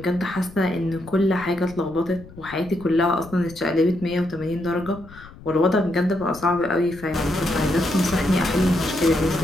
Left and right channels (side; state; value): left; noise; rumble, 19 dB below the sound